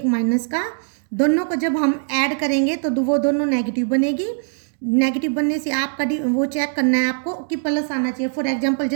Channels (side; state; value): left; silent; 65 dB below the other